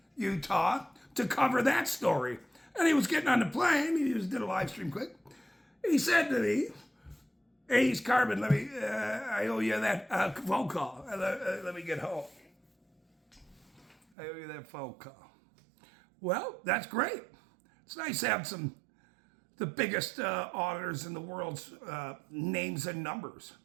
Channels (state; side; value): drops out; left; at 14.0 s